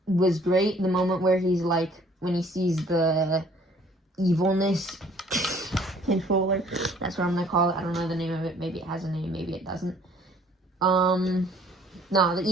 was great. The moment where he's when he sees the evilness controller. That's what I'm gonna call it. I don't know the name of it. Maybe it has a name. Maybe it doesn't. No, the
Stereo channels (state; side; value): normal; both; correlation 0.58